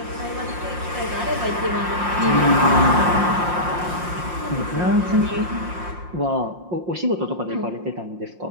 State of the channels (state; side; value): late; left; 5.7 ms